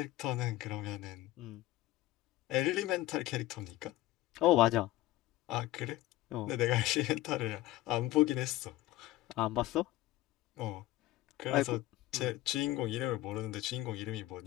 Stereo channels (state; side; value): quieter; right; 16.3 dB